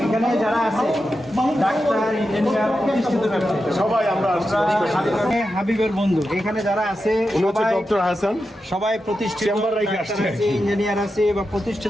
এখানে যারা আছে ডাক্তার, ইঞ্জিনিয়ার, প্রতিষ্ঠিত ব্যবসায়ী সবাই আমরা হাবিবের বন্ধু এখানে যারা আছে ডক্টর হাসান, সবাই প্রতিষ্ঠিত ইঞ্জিনিয়ার আছে বা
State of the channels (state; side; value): normal; both; correlation 0.89